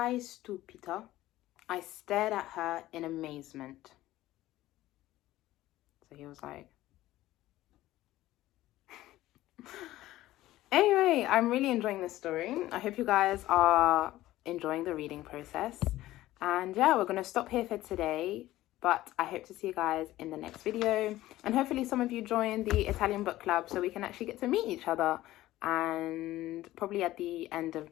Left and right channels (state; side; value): quieter; right; 15.7 dB